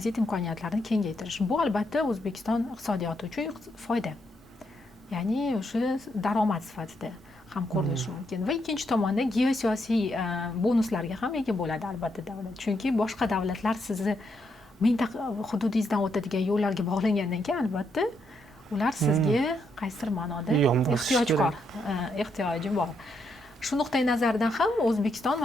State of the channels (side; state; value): both; normal; correlation 0.78